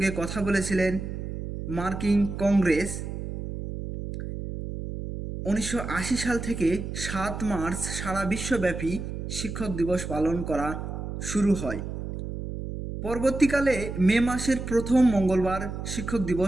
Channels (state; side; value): noise; right; hum, 6 dB below the sound